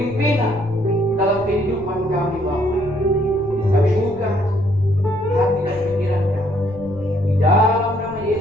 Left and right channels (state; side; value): noise; left; rumble, 18 dB below the sound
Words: dalam kehidupan kami Bapa. Kami buka hati dan pikiran kami di dalam nama